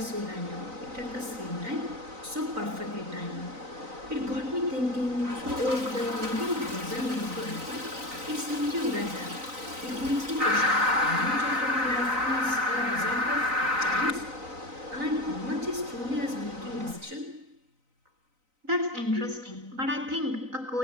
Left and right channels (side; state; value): left; late; 3.9 ms